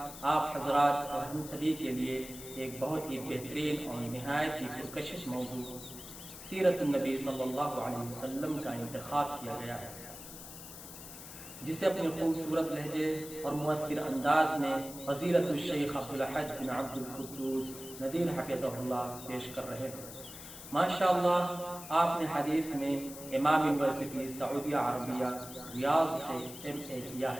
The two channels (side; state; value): left; noise; hiss, 13 dB below the sound